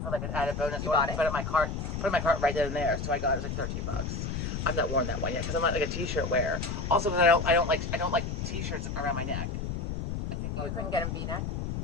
for like an added bonus. You bought it? Put it in my cart right then and there. So I got it. It was like $13. I've not worn that one yet because I'm not like a t-shirt wearer. Also, because I don't like t-shirts around my neck. I think You couldn't get them V-neck?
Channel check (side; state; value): left; noise; rumble, 3 dB below the sound